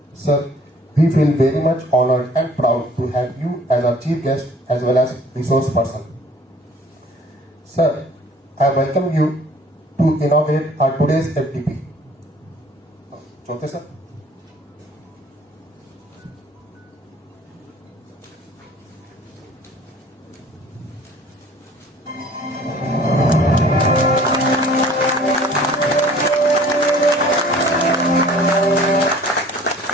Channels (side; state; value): both; normal; correlation 0.52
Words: Sir, we feel very much honored and proud to have you as our chief guest as well as resource person. Sir, I welcome you to inaugurate our today's FDP. Chote sir.